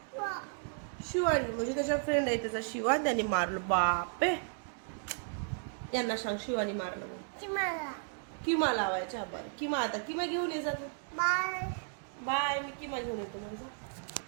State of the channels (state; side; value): silent; left; 55 dB below the other